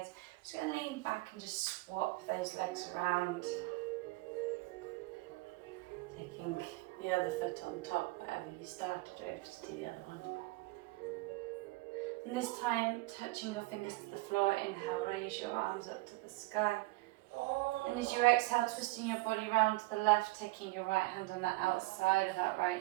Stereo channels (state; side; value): quieter; left; 22.2 dB